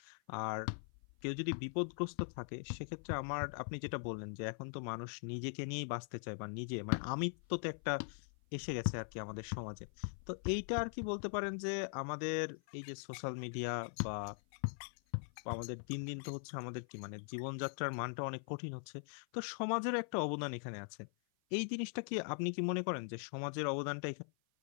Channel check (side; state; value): right; silent; 50 dB below the other